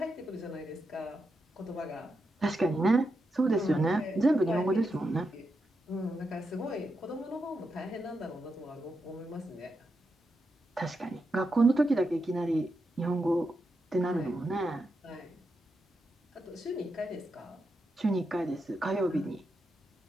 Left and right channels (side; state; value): both; normal; correlation 0.86